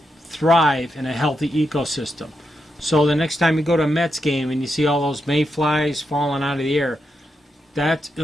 thrive in a healthy ecosystem. So the next time you go to a Mets game and you see all those mayflies falling out of the air, that's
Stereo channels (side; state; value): both; normal; correlation 0.84